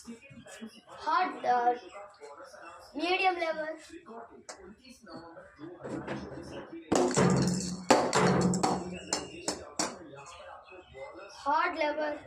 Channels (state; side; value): identical; both; correlation 1.00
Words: Hard medium level. Hard level.